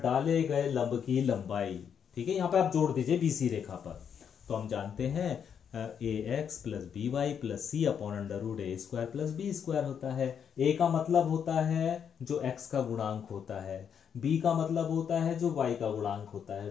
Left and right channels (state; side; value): quieter; right; 7.8 dB